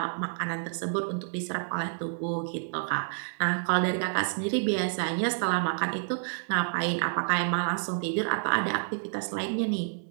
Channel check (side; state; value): left; silent; digital silence